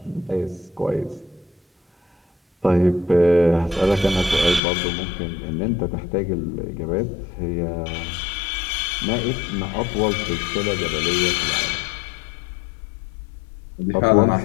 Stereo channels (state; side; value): drops out; right; at 4.6 s